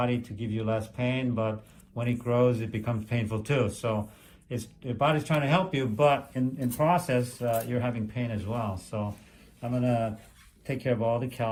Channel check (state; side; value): identical; both; correlation 1.00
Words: to give you less pain, but when it grows, it becomes painful too. So your body's trying to help you, but in process, you're having pain as well. So I'm gonna take care of all the